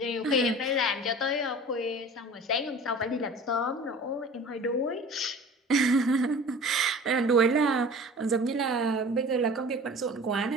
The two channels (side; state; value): both; normal; correlation 0.42